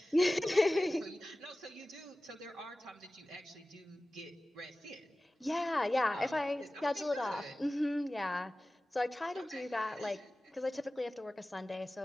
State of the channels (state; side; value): normal; both; correlation 0.96